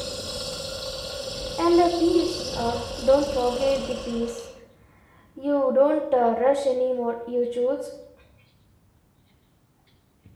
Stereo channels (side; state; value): both; identical; correlation 1.00